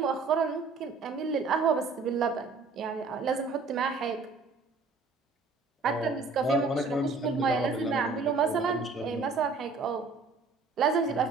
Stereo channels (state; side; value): quieter; left; 4.2 dB